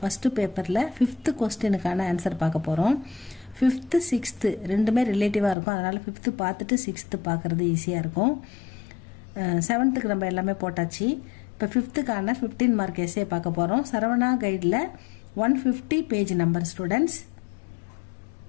பேப்பரில் 5th கொஸ்டினுக்கான ஆன்சர் பார்க்க போகிறோம். 5th 6th ரெண்டுமே ரிலேட்டிவாக இருக்கும், அதனால் 5th பார்த்துட்டு 6th பார்க்குறது ஈஸியாக இருக்கும். 7th நம்ம எல்லாமே போட்டாச்சு. இப்போ 5th 15 மார்க் எஸ்ஏ பார்க்க போகிறோம். சரவணா கைடில் 150 page number students.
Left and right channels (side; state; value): right; drops out; at 5.6 s